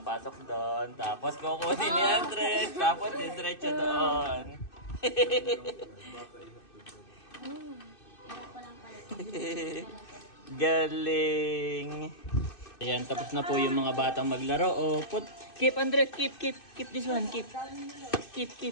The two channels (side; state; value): right; late; 2.6 ms